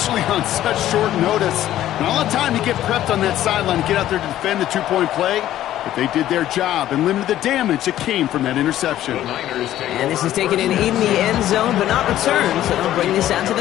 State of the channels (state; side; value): quieter; right; 12.9 dB